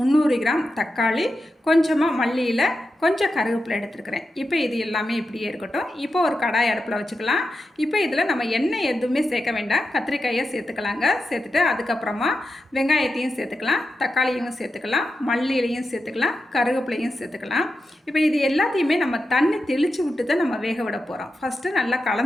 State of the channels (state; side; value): normal; both; correlation 0.89